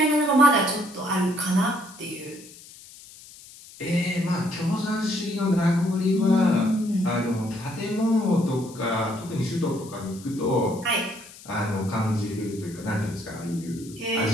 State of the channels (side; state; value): left; noise; hiss, 19 dB below the sound